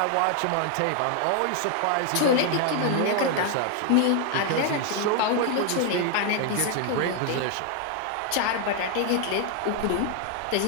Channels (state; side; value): different; both; correlation 0.00